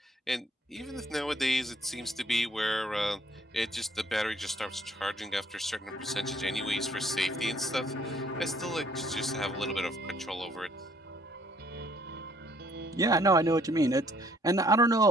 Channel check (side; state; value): both; normal; correlation 0.63